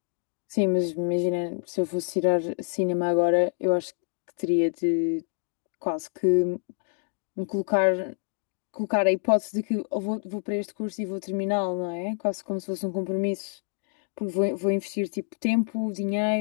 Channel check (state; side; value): silent; right; 58 dB below the other